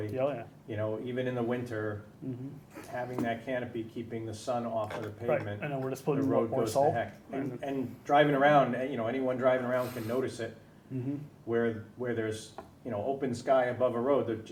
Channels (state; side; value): identical; both; correlation 1.00